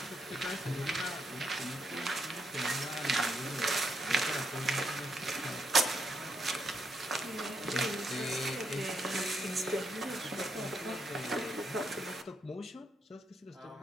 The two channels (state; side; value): normal; both; correlation 0.78